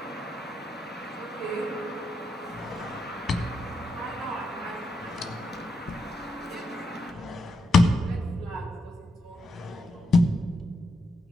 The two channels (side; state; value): both; normal; correlation 0.83